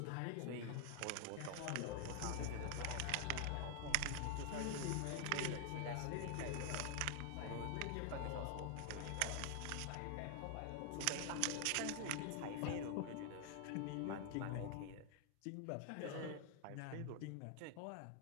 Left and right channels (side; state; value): both; different; correlation 0.00